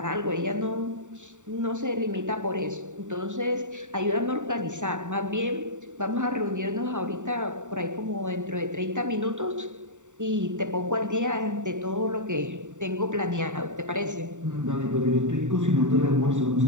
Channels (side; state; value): left; late; 0.85 ms